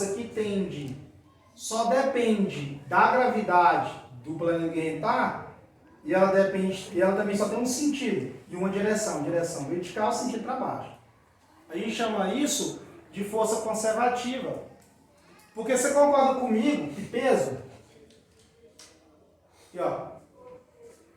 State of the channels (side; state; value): both; identical; correlation 1.00